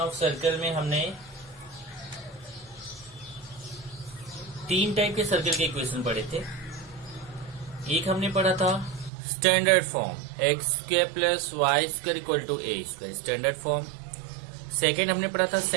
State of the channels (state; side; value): drops out; left; at 9.1 s